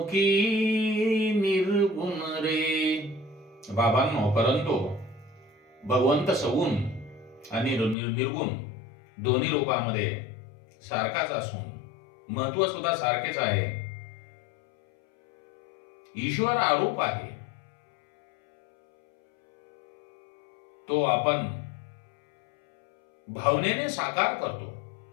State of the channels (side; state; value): right; drops out; at 8.0 s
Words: की निर्गुण रे. बाबांनो, परंतु भगवंत सगुण आणि निर्गुण दोन्ही रूपामध्ये सारखाच असून महत्व सुद्धा सारखेच आहे. ईश्वर आरूप आहे, तो आपण भावनेने साकार करतो.